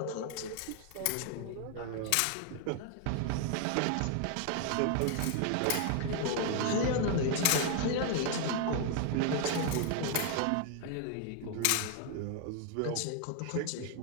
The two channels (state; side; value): different; both; correlation 0.00